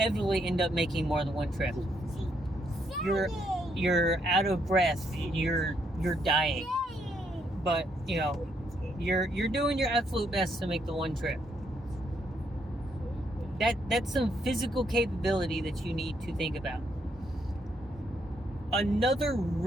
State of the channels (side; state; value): both; normal; correlation 0.74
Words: end up making more than one trip. You're out of breath. You're dying. But you're doing your absolute best to make the one trip. That's some physical capability that you need to think about. Another